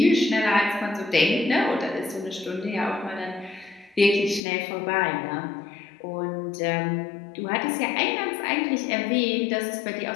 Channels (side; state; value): right; drops out; at 4.4 s